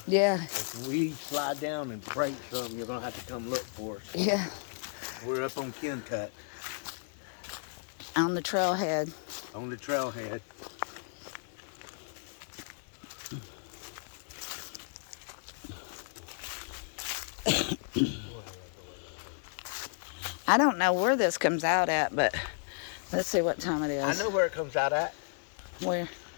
Yeah. if we slide down and break something, you're gonna have to come look for us. Yeah. We're up on Kencut, On the trailhead. on the trailhead. I don't know where this comes out at, but let's see what time it is. I know where it comes out at. Where?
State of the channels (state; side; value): silent; right; digital silence